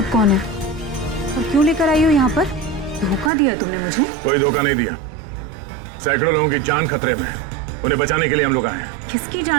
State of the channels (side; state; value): left; drops out; at 3.3 s